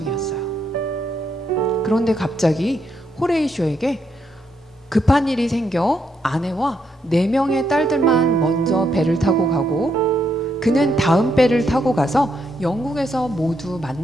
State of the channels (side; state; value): both; normal; correlation 0.77